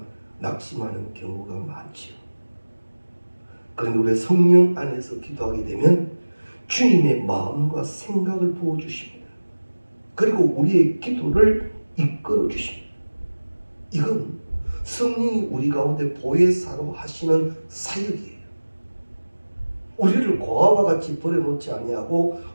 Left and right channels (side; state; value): both; inverted; correlation -1.00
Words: 낙심하는 경우가 많지요. 그런데 우리 성령 안에서 기도하게 되면 주님의 마음과 생각을 부어주십니다. 그리고 우리의 기도를 이끌어 주십니다. 이건 성령이 우리 가운데 보혜사로 하시는 사역이에요. 우리를 고아와 같이 버려놓지 아니하고